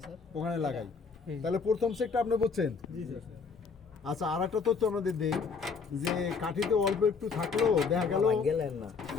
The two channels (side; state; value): right; quieter; 5.2 dB